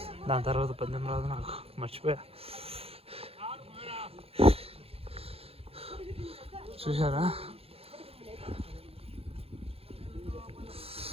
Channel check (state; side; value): late; left; 0.28 ms